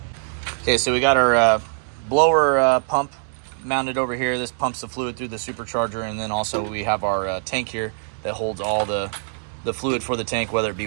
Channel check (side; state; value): left; silent; digital silence